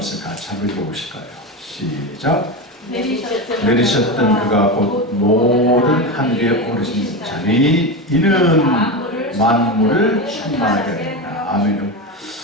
같이 한번 읽어보실까요? 시작. 내리셨던 그가 곧 모든 하늘에 오르신 자니 이는 만물을 충만하게 하리라. 아멘.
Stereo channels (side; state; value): both; normal; correlation 0.18